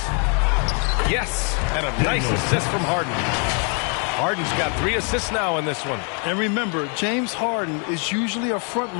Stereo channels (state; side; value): quieter; right; 39.1 dB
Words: Yes, and a nice assist from Harden. Harden's got 3 assists now in this one. And remember, James Harden is usually a front